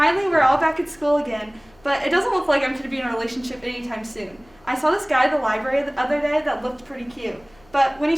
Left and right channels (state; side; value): noise; left; hum, 30 dB below the sound